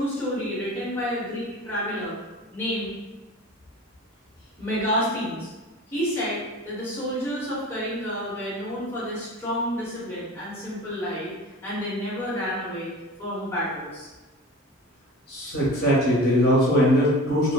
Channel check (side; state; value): both; normal; correlation 0.37